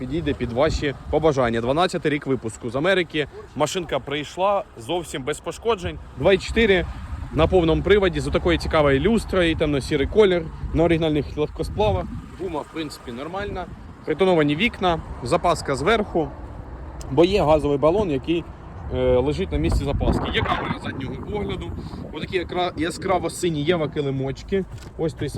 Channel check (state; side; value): identical; both; correlation 1.00